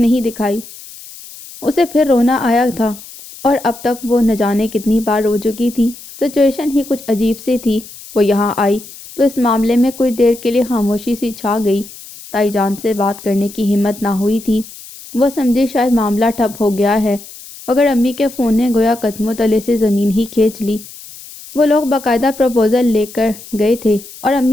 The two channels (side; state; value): left; noise; hiss, 17 dB below the sound